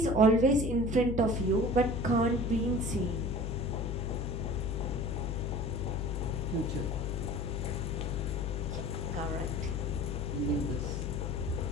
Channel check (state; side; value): noise; left; hum, 2 dB below the sound